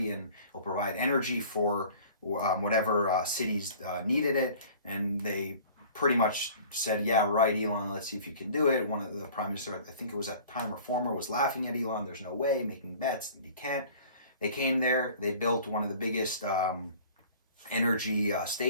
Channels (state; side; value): inverted; both; correlation -0.47